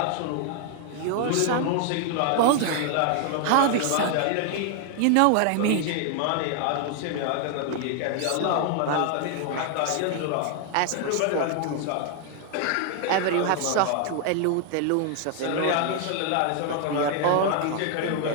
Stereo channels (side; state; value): both; different; correlation 0.00